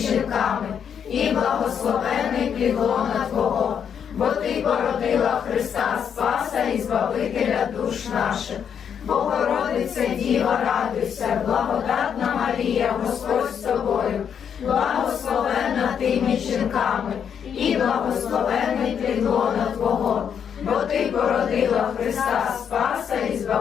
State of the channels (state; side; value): quieter; right; 7.9 dB